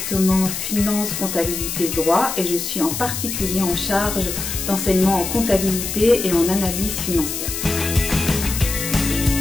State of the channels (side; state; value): left; noise; hiss, 5 dB below the sound